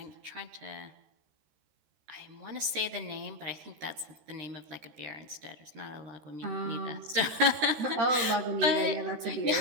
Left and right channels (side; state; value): left; late; 13 ms